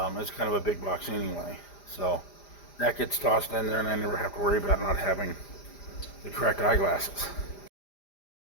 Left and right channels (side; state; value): right; late; 5.0 ms